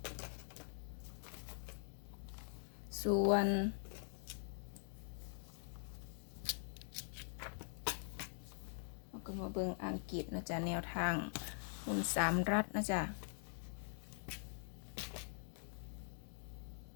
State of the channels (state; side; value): silent; right; digital silence